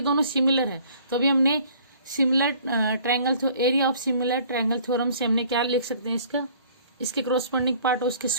सिमिलर है तो अभी हमने similar triangle area of similar triangle theorem से हमने क्या लिख सकते हैं, इसका इसके क्रॉसपोंडिंग पार्ट और उसके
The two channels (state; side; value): inverted; both; correlation -0.55